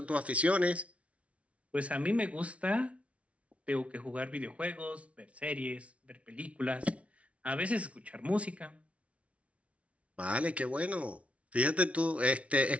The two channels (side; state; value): left; late; 0.063 ms